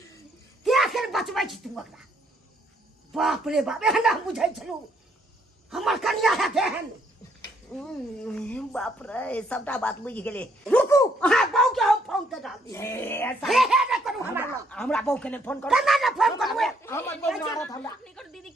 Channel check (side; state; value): both; normal; correlation 0.69